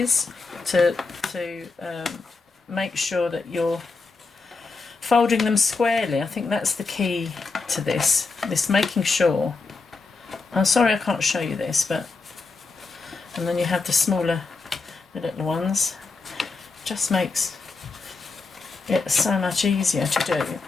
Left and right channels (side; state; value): right; quieter; 4.1 dB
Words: to make sure that you're folding them squarely. I think that's the key to this making sure. I'm sorry I can't show you this, but, and then you have the little ones. Just makes it so much easier to do.